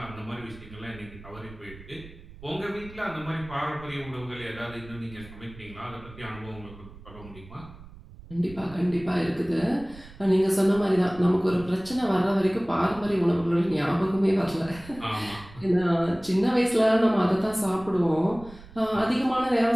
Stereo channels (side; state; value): right; noise; rumble, 19 dB below the sound